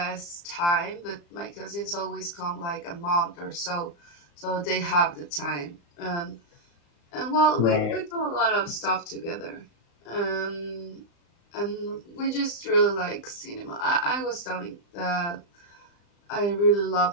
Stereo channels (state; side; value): late; right; 35 ms